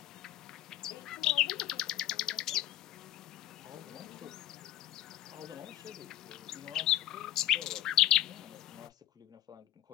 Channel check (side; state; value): right; quieter; 13.1 dB